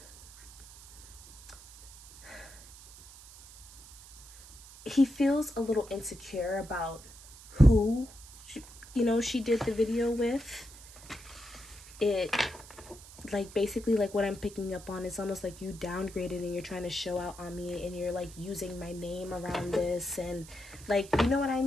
he feels a little insecure about who, she did the video with. It, like, basically, like, what I'm picking up on is almost like you downgraded and you're trying to show out on me, and you're like using my name around this, and like, you know what I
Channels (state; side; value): noise; right; hiss, 18 dB below the sound